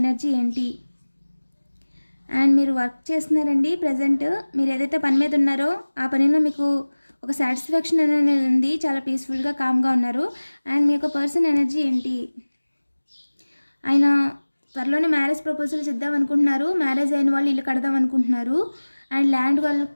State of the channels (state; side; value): inverted; both; correlation -1.00